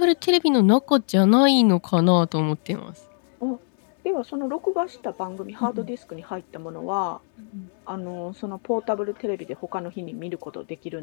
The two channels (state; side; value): silent; right; digital silence